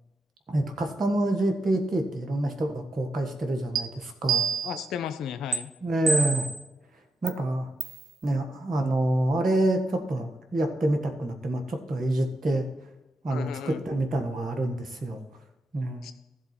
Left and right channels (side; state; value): both; normal; correlation 0.85